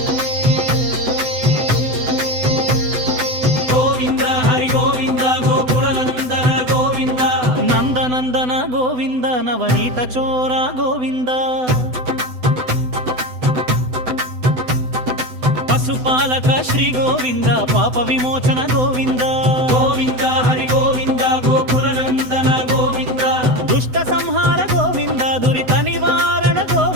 ಗೋವಿಂದ ಹರಿ ಗೋವಿಂದ ಗೋಕುಲನಂದನ ಗೋವಿಂದ ನಂದನಂದನ ಗೋವಿಂದ ನವನೀತ ಚೋರ ಗೋವಿಂದ ಪಶುಪಾಲಕ ಶ್ರೀ ಗೋವಿಂದ ಪಾಪ ವಿಮೋಚನ ಗೋವಿಂದ ಗೋವಿಂದ ಹರಿ ಗೋವಿಂದ ಗೋಕುಲನಂದನ ಗೋವಿಂದ ದುಷ್ಟ ಸಂಹಾರ ಗೋವಿಂದ ದುರಿತ ನಿವಾರಣ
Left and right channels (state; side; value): late; left; 7.9 ms